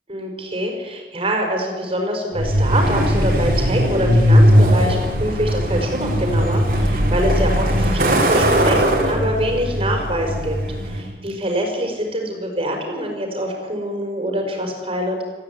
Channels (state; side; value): normal; both; correlation 0.63